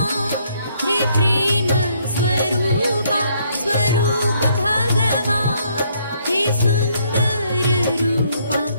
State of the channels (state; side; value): inverted; both; correlation -0.68